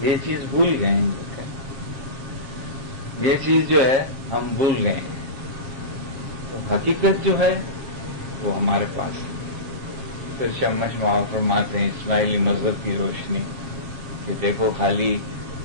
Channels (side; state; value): left; late; 7.0 ms